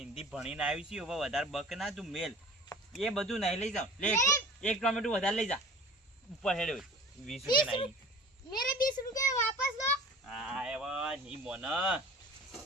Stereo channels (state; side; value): normal; both; correlation 0.42